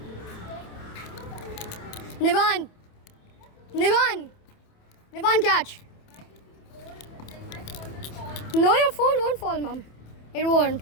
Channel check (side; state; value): right; late; 28 ms